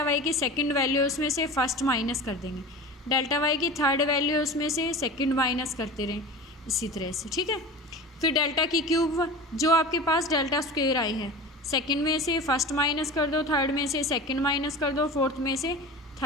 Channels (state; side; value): normal; both; correlation 0.33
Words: वाई की सेकंड वैल्यू है उसमें से फर्स्ट माइनस कर देंगे, डेल्टा वाई की थर्ड वैल्यू है उसमें से सेकंड माइनस करते रहें, इसी तरह से, ठीक है। फिर डेल्टा की क्यूब, जो आपके पास डेल्टा स्क्वेयर आई है, सेकंड में से फर्स्ट माइनस कर दो, थर्ड में से सेकंड माइनस कर दो, फोर्थ में से